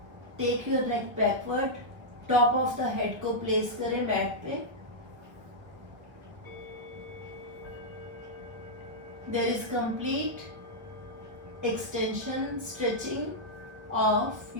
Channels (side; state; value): left; late; 1.3 ms